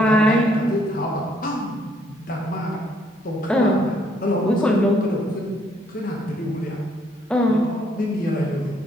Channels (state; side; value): normal; both; correlation 0.68